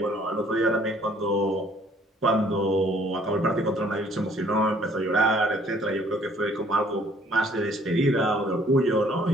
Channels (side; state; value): both; normal; correlation 0.60